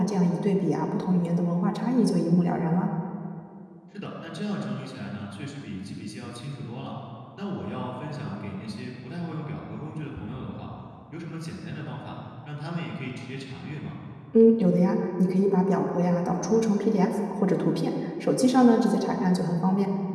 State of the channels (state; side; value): identical; both; correlation 1.00